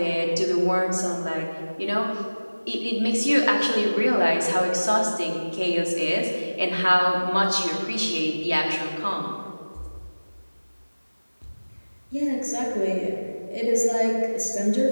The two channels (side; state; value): both; inverted; correlation -1.00